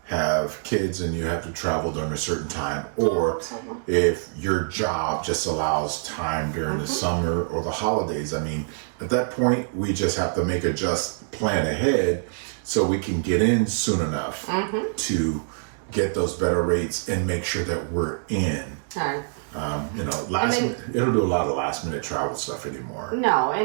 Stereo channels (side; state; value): left; silent; digital silence